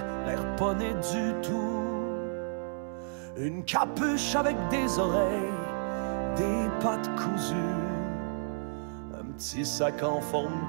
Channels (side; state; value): left; silent; 57 dB below the other